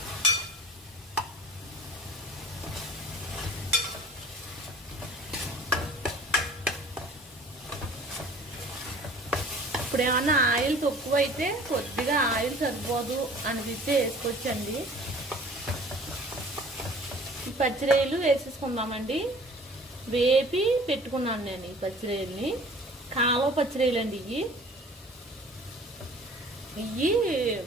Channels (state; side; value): normal; both; correlation 0.48